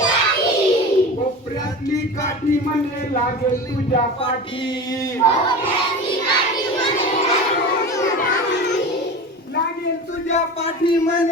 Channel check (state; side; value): normal; both; correlation 0.31